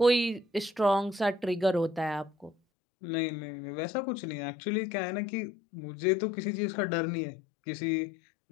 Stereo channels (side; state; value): right; drops out; at 2.6 s